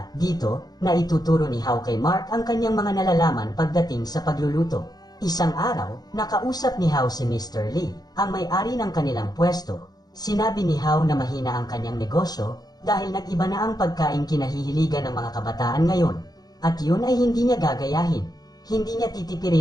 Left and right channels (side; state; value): right; late; 0.19 ms